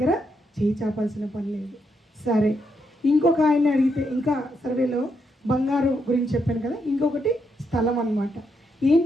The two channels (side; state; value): both; normal; correlation 0.80